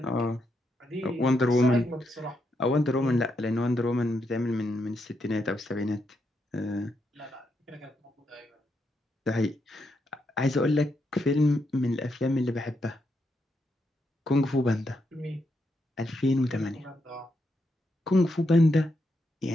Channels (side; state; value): both; normal; correlation 0.81